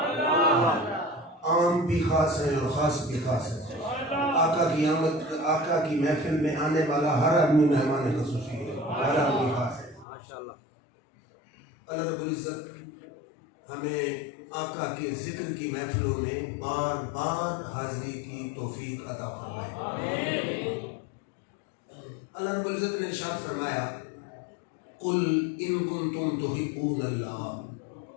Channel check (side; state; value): right; drops out; at 10.1 s